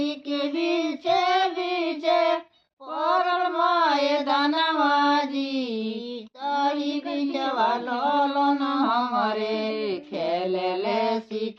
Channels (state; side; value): identical; both; correlation 1.00